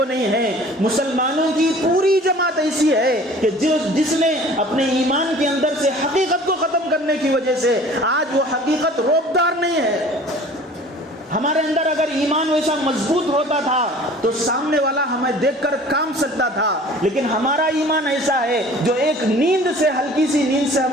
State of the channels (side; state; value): both; normal; correlation 0.47